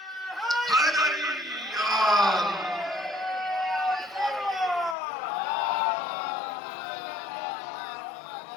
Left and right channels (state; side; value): drops out; right; at 5.0 s